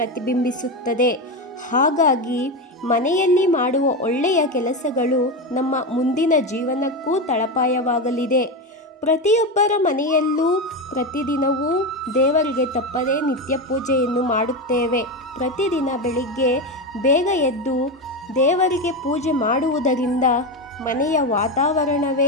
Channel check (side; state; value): both; normal; correlation 0.15